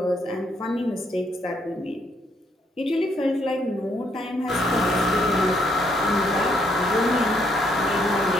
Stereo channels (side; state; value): both; normal; correlation 0.71